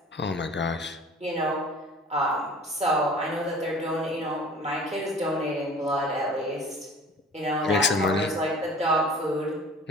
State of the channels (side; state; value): both; normal; correlation 0.45